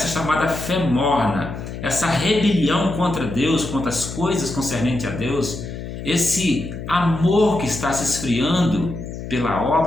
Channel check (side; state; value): left; noise; hum, 9 dB below the sound